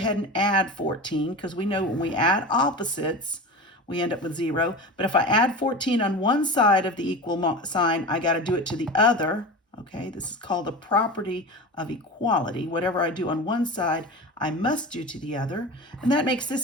and add 14, because we know when we add opposites, we end up with 0. But if I add 14 on one side of the equal sign, I got to do it to the other. Okay, this is called the property of equality. Whatever I do on one side, I must do to the other. And that makes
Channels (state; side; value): normal; both; correlation 0.29